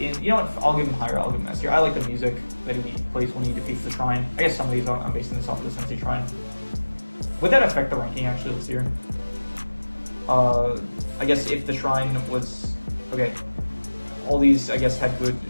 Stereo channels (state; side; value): inverted; both; correlation -1.00